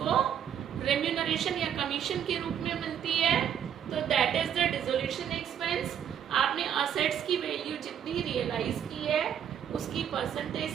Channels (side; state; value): left; quieter; 9.1 dB